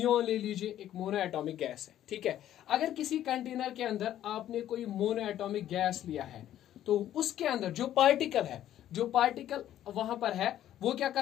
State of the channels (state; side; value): quieter; right; 12.0 dB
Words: ले लीजिए, एक मोनोएटॉमिक गैस है। ठीक है, अगर किसी कंटेनर के अंदर आपने कोई मोनोएटॉमिक गैस लिया है तो उसके अंदर जो पार्टिकल वहां पर है वो क्या